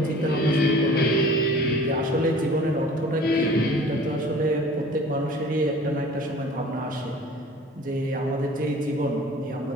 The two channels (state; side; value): normal; both; correlation 0.46